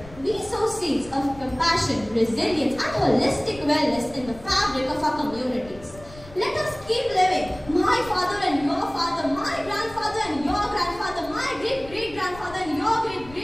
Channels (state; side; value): noise; left; rumble, 18 dB below the sound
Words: we sow seeds of compassion, resilience and holistic wellness in the fabric of our communities. Let us keep living. My father and your father, my grandfather and your grandfather, my great-great-grandfather and your